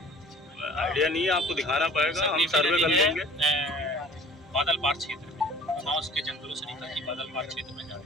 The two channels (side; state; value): both; normal; correlation 0.48